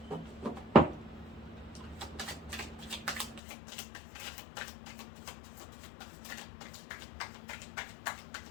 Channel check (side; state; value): right; drops out; at 3.4 s